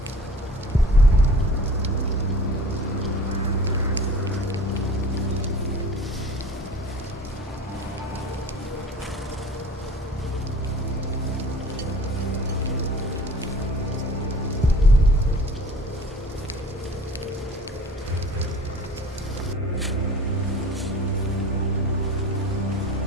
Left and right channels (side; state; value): both; normal; correlation 0.45